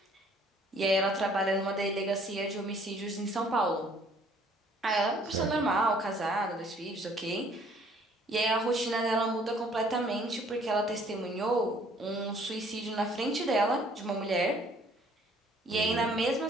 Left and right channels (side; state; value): both; normal; correlation 0.59